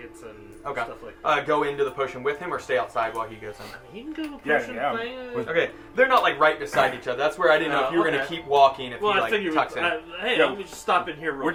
and Okay. stuff like that. Go into the potion with him or stay outside while he goes in? I mean, he can go to the Yeah, potion yeah. thing. Okay, they're not like right beside each other. That's where I didn't know if you were gonna Okay. keep walking if Well, he I like figured. tucks in. Hey, Yeah. let me just stop in here real We're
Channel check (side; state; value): both; identical; correlation 1.00